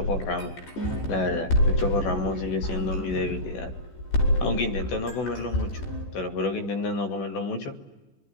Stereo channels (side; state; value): right; late; 14 ms